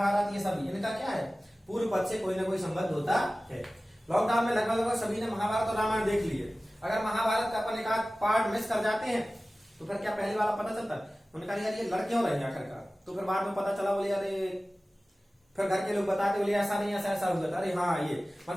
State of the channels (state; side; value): normal; both; correlation 0.97